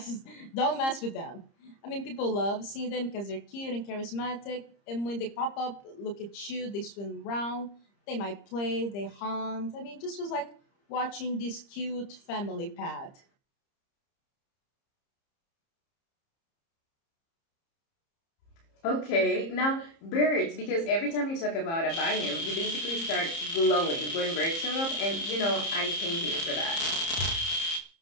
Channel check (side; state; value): right; late; 30 ms